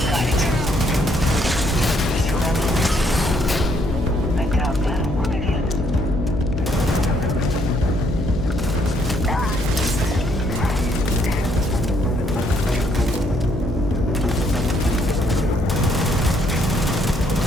Got it. I doubt that'll work again.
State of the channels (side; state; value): left; noise; hum, 7 dB below the sound